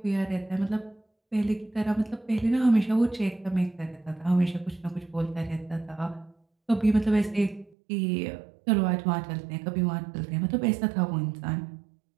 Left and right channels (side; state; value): left; drops out; at 7.8 s